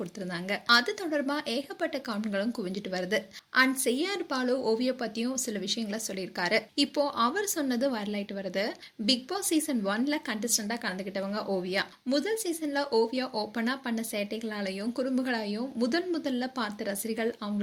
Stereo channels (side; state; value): both; identical; correlation 1.00